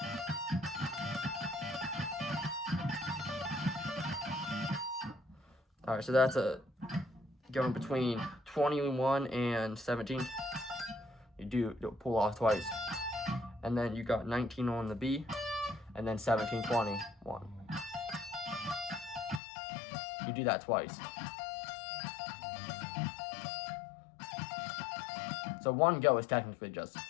Alright, so that's going between 21 and 17. You pull off twice. And then you got 19 on the B, and then 17, 20, 1. You do that twice. So one go is technically just,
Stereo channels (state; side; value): drops out; right; at 19.4 s